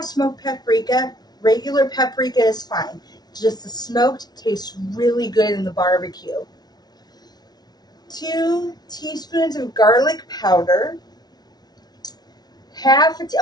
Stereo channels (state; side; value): late; right; 0.19 ms